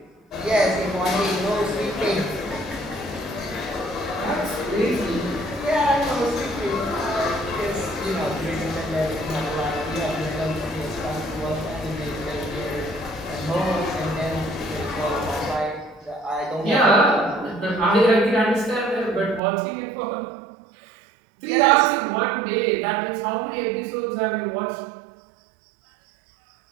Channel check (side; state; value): left; drops out; at 19.4 s